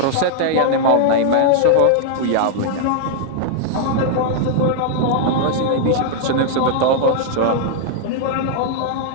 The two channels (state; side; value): different; both; correlation -0.01